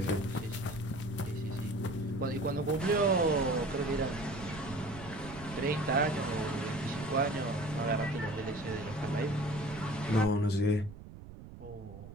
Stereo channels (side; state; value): right; noise; rumble, 14 dB below the sound